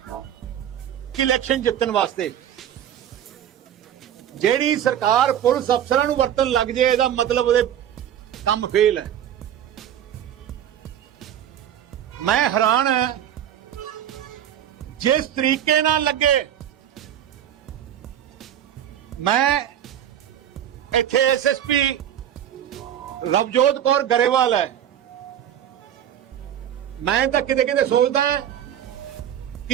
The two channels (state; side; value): quieter; left; 10.4 dB